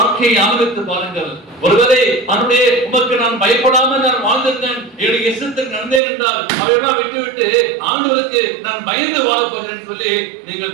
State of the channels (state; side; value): drops out; left; at 6.0 s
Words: ஆரம்பித்து பாருங்கள். ஒருவேளை அவனுடைய உமக்கு நான் பயப்படாமல் நான் வாழ்ந்திருந்தேன், என்னுடைய இஷ்டத்துக்கு நடந்தேன் என்றால் அவையெல்லாம் விட்டுவிட்டு ஆண்டவருக்கு நான் பயந்து வாழப் போகிறேன் சொல்லி நீங்கள்